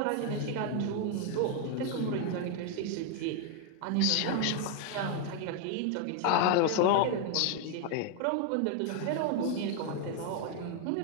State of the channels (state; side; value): different; both; correlation 0.01